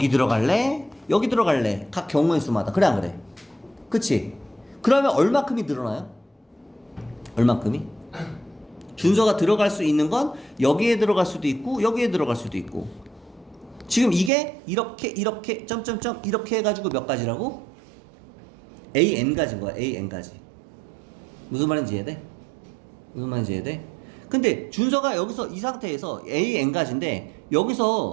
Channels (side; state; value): left; drops out; at 14.3 s